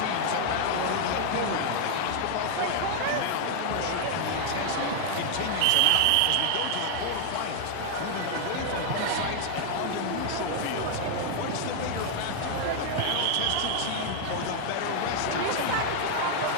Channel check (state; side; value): different; both; correlation 0.00